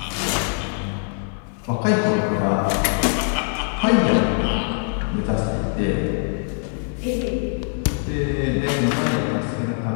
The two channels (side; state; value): right; silent; 56 dB below the other